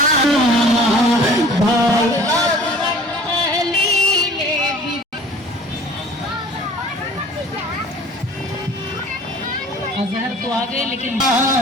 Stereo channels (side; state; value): both; normal; correlation 0.48